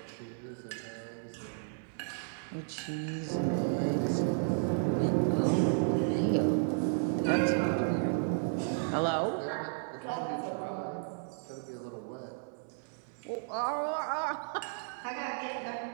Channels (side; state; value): left; silent; digital silence